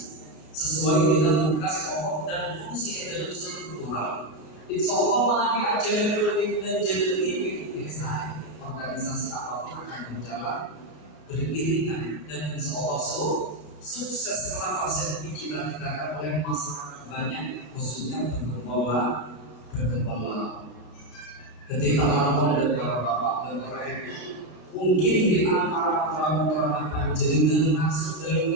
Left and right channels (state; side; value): late; right; 32 ms